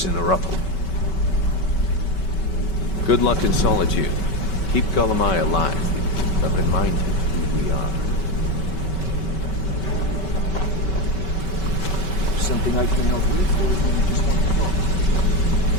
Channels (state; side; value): late; right; 5.2 ms